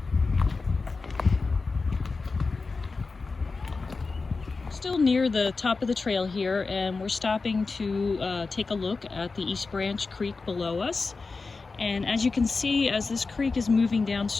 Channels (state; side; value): quieter; right; 4.1 dB